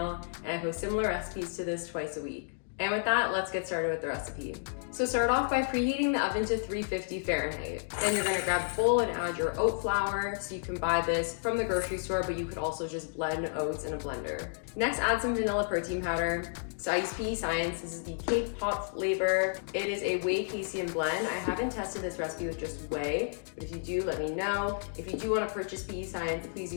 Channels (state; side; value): silent; right; digital silence